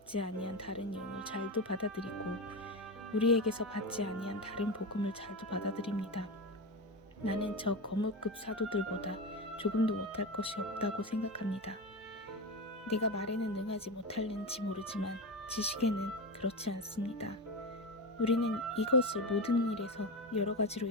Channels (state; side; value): normal; both; correlation 0.19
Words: 아니한 다른 영을 잘도 받아들이고 우리에게서 받지 아니한 다른 복음을 잘도 받아들입니다. 나는 저 거물급 사도들보다 조금도 못할 것이 없다고 생각합니다. 내가 말에는 능하지 못할는지 모르지만 지식에는 그렇지 않습니다. 우리는 이것을 모든 일에서 여러 가지로